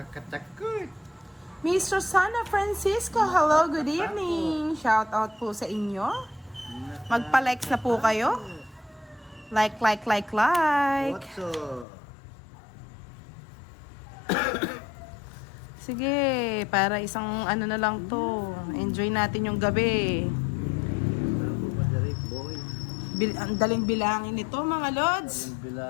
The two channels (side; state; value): right; drops out; at 11.9 s